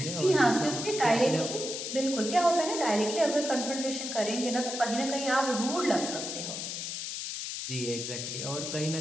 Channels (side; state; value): left; noise; hiss, 5 dB below the sound